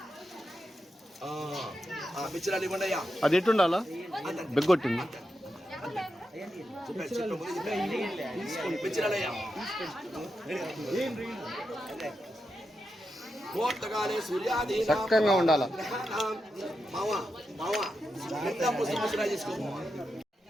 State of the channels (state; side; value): normal; both; correlation 0.87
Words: మిచ్చరాలు ఇవ్వండి అయ్యా. అది ఎట్టుండాలా బెగ్గొట్టింది. మిచ్చరాలయ్యా ముహూర్తకాలే సూర్యాదీనాం చక్కగా ఉండాలా. గ్రహాణాం మావా మావా పుష్పరాజు చేసుకో.